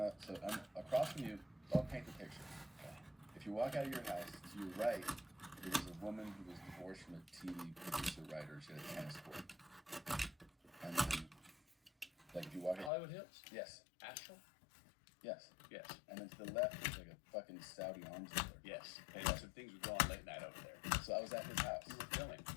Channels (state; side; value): drops out; right; at 12.9 s